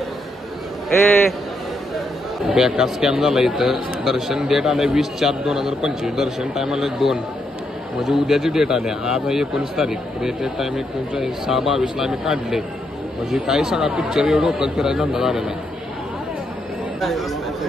बेकार स्कॅम झाला इथं. दर्शन डेट आलंय 20/4/2025. दर्शन टाइम आलंय 2 म्हणजे उद्याची डेट आली. आज आहे 19 तारीख. डेट टाइम 6/22 आम्ही काढले. म्हणजे काही सगळा पिक्चर एवढं डोकं फिरायचा धंदा झालेला आहे.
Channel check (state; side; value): normal; both; correlation 0.79